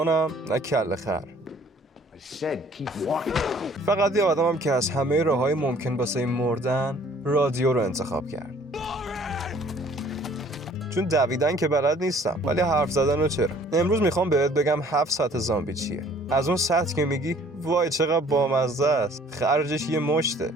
نه کله خر، فقط یه آدمم که از همه راههای ممکن واسه مردن رادیو رو انتخاب کرد. چون دویدن که بلد نیستم ولی حرف زدن رو چرا. امروز میخوام بهت بگم 7 سطح زامبی چیه. از اون سطح که میگی وای چقدر بامزه است، خرجش یه مشته،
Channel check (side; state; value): both; normal; correlation 0.56